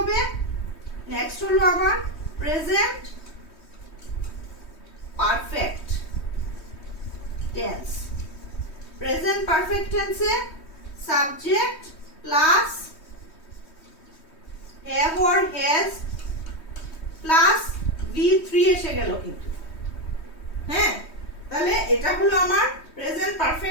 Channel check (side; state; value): right; late; 3.2 ms